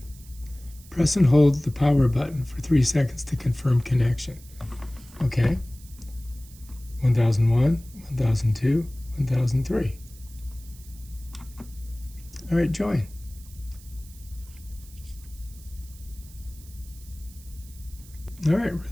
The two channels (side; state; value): right; noise; hiss, 22 dB below the sound